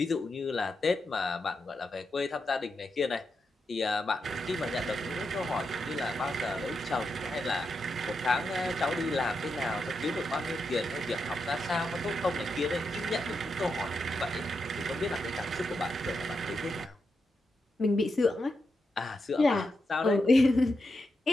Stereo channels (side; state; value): both; normal; correlation 0.85